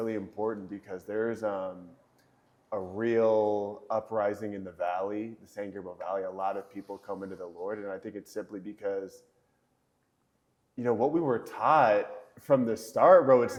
important, because there's a real uprising in the valley, the San Gabriel Valley. A lot of people come into the Lord, and I think it's simply because what we were taught from the start, bro, it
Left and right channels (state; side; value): identical; both; correlation 1.00